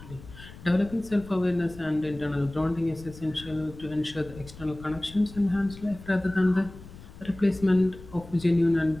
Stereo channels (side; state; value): left; noise; rumble, 17 dB below the sound